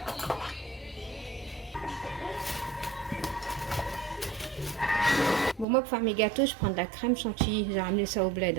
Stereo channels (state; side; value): drops out; left; at 5.7 s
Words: Bon, moi pour faire mes gâteaux, je prends de la crème chantilly. J'ai ramené ça au bled.